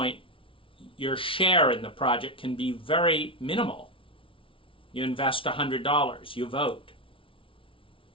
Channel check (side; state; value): right; late; 0.25 ms